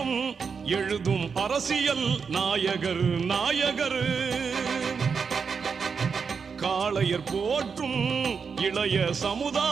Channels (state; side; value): quieter; left; 5.8 dB